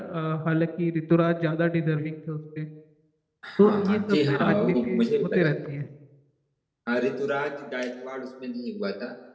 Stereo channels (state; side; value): identical; both; correlation 1.00